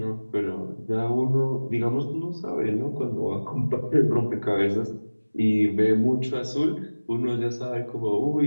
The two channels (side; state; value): both; inverted; correlation -1.00